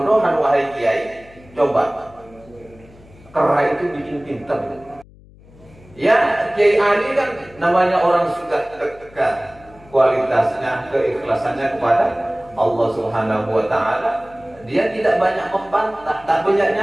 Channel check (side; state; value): left; noise; hum, 24 dB below the sound